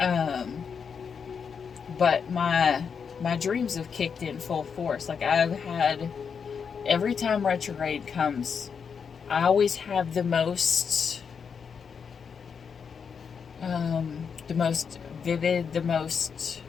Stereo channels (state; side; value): quieter; right; 6.4 dB